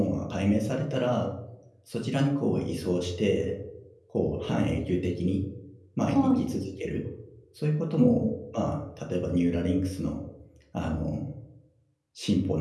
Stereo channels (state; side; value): identical; both; correlation 1.00